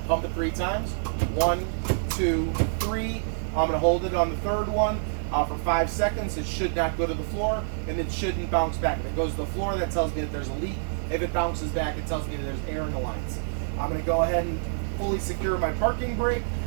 pump it 3 times. 1, 2, 3. I'm going to hold it on the third one for 5 seconds. It should not go to the floor, and it shouldn't bounce back. If it goes to the floor, that tells me that there's a leak. If it bounces back, it tells me that there's air in the lines. I'm going to go ahead and fully secure my parking brake.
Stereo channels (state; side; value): silent; left; digital silence